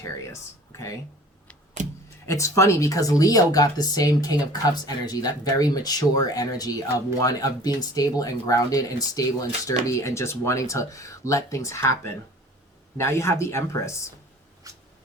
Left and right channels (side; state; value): both; normal; correlation 0.47